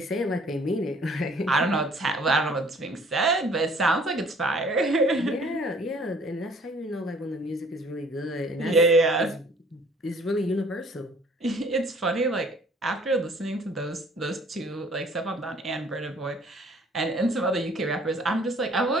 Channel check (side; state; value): both; normal; correlation 0.56